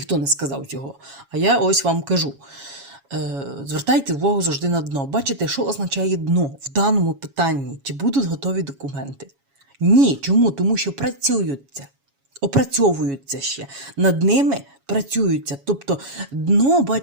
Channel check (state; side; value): late; left; 7.2 ms